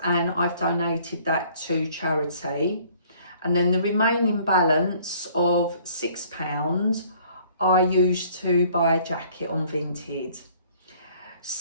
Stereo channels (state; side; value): inverted; both; correlation -0.57